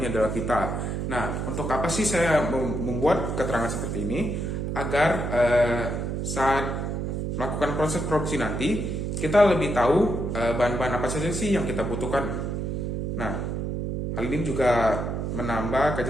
adalah pita. Nah, untuk apa sih saya membuat keterangan seperti ini? Agar saat melakukan proses produksi nanti kita lebih tahu bahan-bahan apa saja sih yang kita butuhkan. Nah, hal ini juga menambah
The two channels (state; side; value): noise; right; hum, 2 dB below the sound